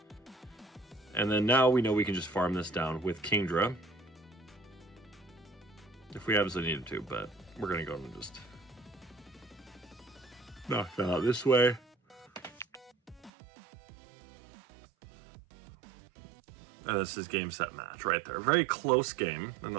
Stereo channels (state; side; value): drops out; left; at 13.3 s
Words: And then now we know we can just farm this down with Kingdra. if we absolutely needed to, but we're going to go and just knock that out this way. And this is game, set, match right there. Very close game in